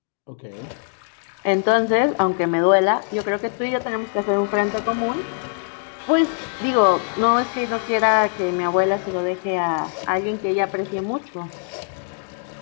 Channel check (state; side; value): silent; right; 64 dB below the other